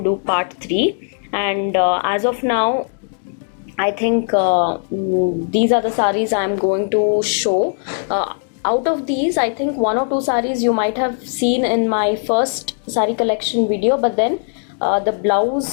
do part 3, and as of now I think these are the saris I'm going to show. Out of these, I think one or two saris you might have seen in my first sari collection video, but then the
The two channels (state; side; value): silent; right; digital silence